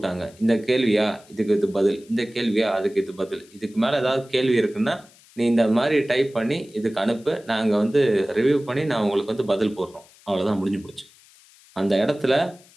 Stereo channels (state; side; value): noise; left; hiss, 27 dB below the sound